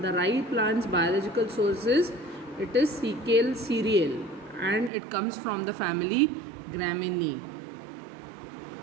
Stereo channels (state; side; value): drops out; left; at 4.9 s